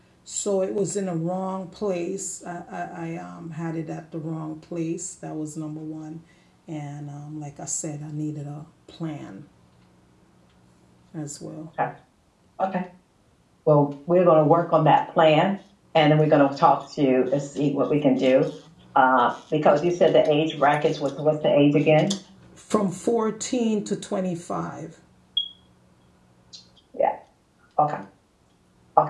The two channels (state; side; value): identical; both; correlation 1.00